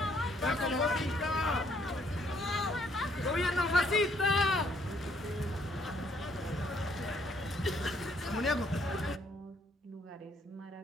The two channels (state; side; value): normal; both; correlation 0.67